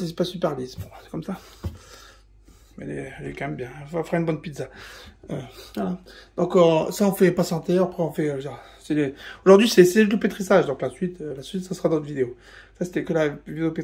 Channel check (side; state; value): both; identical; correlation 1.00